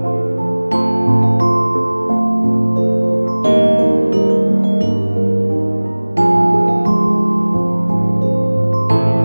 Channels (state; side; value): inverted; both; correlation -1.00